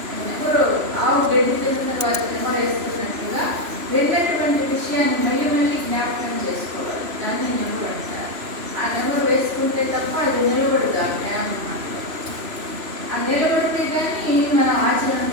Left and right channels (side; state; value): left; late; 3.0 ms